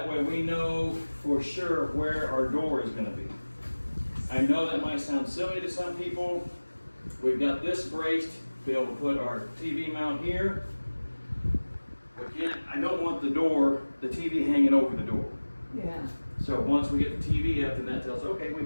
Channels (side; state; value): both; inverted; correlation -1.00